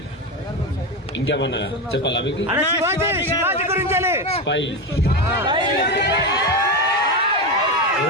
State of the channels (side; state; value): both; normal; correlation 0.15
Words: ఇంకేమన్నా చెప్పాలా మీకు? స్పై